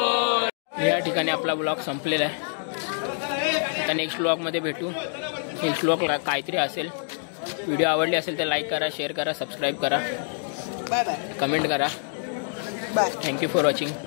या ठिकाणी आपला ब्लॉग संपलेला आहे. आता नेक्स्ट ब्लॉगमध्ये भेटू. नेक्स्ट ब्लॉग काहीतरी असेल. व्हिडिओ आवडली असेल तर लाईक करा, शेअर करा, सबस्क्राईब करा, बाय बाय कमेंट करा. Bye. Thank you for watching.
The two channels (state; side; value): silent; right; 61 dB below the other